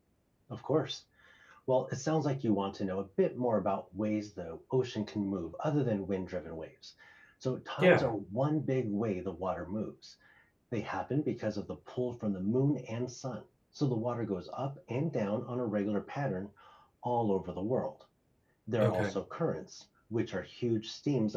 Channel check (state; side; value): identical; both; correlation 1.00